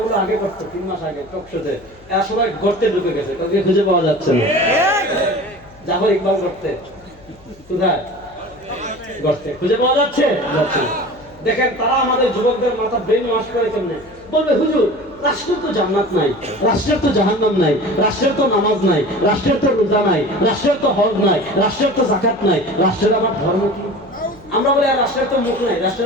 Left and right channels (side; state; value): left; noise; hum, 26 dB below the sound